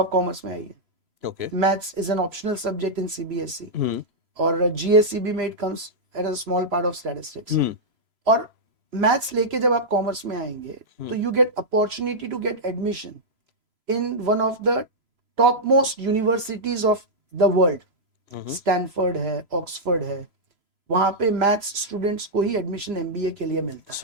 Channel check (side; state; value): left; late; 3.0 ms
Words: कॉमर्स में आइए. Okay. Maths is an optional subject in CBSE और GSEB में it comes at a small part of statistics. और मैथ्स लेके जब आप कॉमर्स में आएंगे तो you get opportunity to get admission in one of the top most universities of the world. Stanford है, ऑक्सफोर्ड है, वहां पे मैथ्स स्टूडेंट्स को ही एडमिशन MBA के लिए मिलता है.